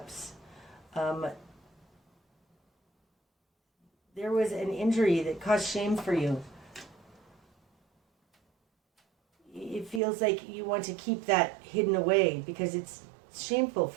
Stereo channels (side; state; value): left; drops out; at 10.0 s